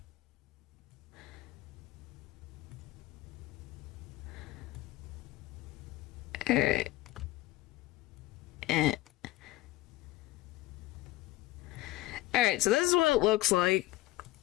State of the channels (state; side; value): quieter; right; 17.6 dB